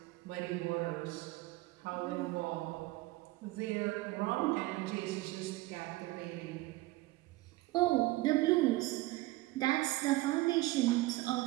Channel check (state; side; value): quieter; left; 19.3 dB